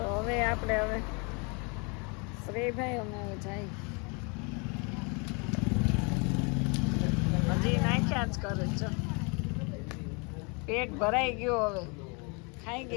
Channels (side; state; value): right; quieter; 32.5 dB